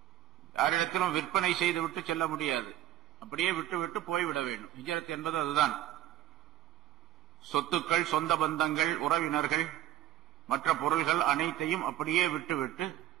யாரிடத்திலும் விற்பனை செய்துவிட்டு செல்ல முடியாது, அப்படியே விட்டுவிட்டு போய்விட வேண்டும். ஹிஜ்ரத் என்பது அதுதான். சொத்துக்கள், சொந்த பந்தங்கள், உறவினர்கள், மற்ற பொருள்கள் அனைத்தையும் அப்படியே விட்டுவிட்டு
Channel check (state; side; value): quieter; left; 13.1 dB